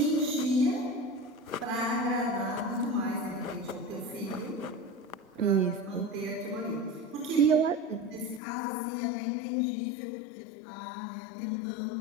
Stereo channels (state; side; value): drops out; right; at 8.4 s